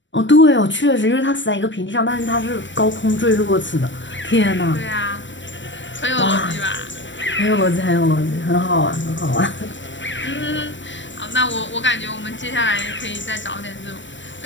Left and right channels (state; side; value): late; right; 0.54 ms